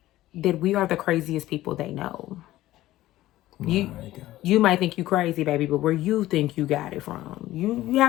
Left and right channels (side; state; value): right; quieter; 15.6 dB